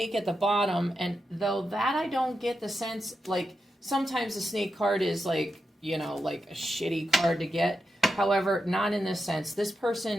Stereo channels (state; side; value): normal; both; correlation 0.88